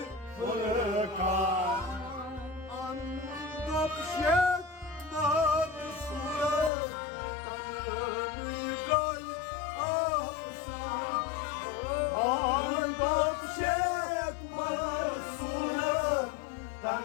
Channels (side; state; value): right; drops out; at 6.7 s